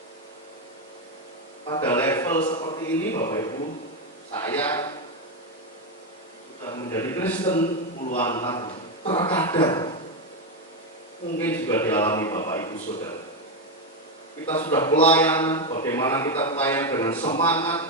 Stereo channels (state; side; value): normal; both; correlation 0.07